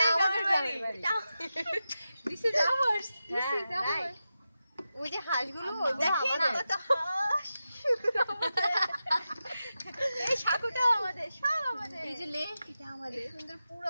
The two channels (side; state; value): both; inverted; correlation -0.91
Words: গ্রামের বাড়ি। This is ours, this is ours. ওই যে হাঁসগুলো, ওটা আমাদের। কত হাঁস, এই সাকুটাও আমাদের, সব আমাদের। এই যে লেক, এটা আমাদের। সুন্দর পুরো